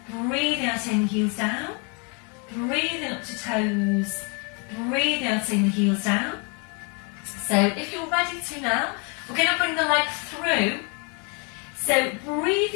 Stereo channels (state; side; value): quieter; right; 34.3 dB